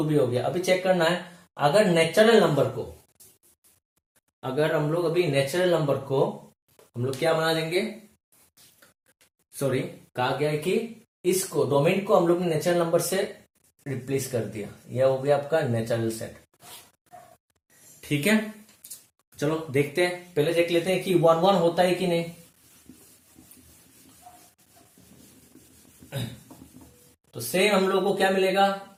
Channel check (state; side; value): identical; both; correlation 1.00